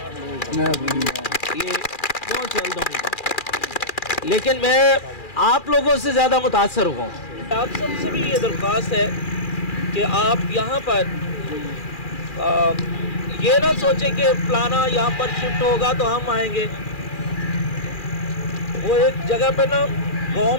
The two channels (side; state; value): right; late; 2.4 ms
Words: ये बहुत जल्द होगी, लेकिन मैं आप लोगों से ज़्यादा मुतासर हुआ हूँ। आप सबसे भी ये दरख्वास्त है कि आप यहाँ पर ये ना सोचें कि फलाना यहाँ पर शिफ्ट होगा तो हम आएंगे। वो एक जगह पे ना गांव